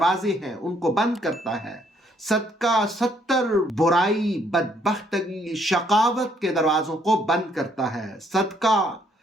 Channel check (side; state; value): both; normal; correlation 0.68